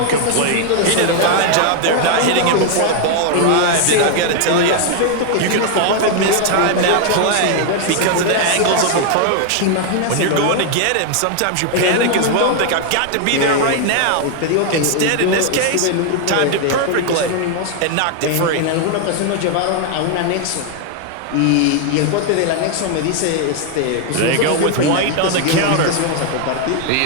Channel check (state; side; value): different; both; correlation 0.00